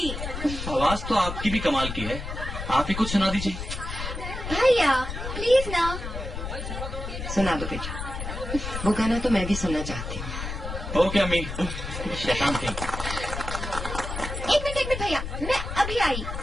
आवाज तो आपकी भी कमाल की है, आप ही कुछ सुना दीजिए। भैया प्लीज ना। सुना दो बेटा, वो गाना तो मैं भी सुनना चाहती हूँ। ओके अम्मी, शैतान थी। एक मिनट भैया, मैं अभी आई।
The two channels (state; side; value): noise; left; rumble, 6 dB below the sound